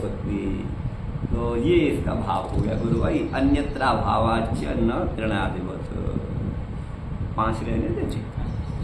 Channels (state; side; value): identical; both; correlation 1.00